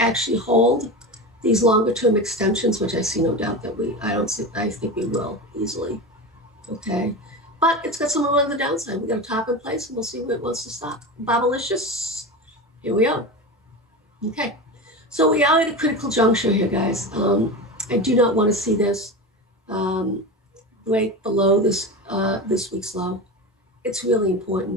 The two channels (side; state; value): both; normal; correlation 0.25